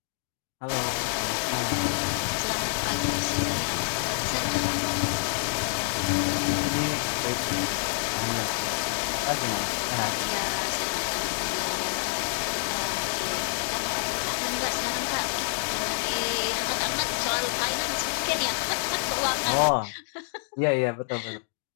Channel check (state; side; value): silent; right; 60 dB below the other